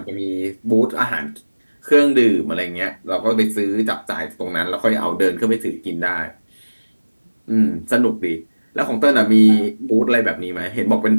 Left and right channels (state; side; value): inverted; both; correlation -1.00